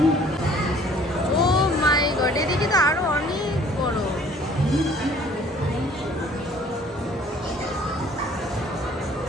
ও মাই গড, এদিকে তো আরো অনেক বড়।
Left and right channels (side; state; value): both; normal; correlation 0.55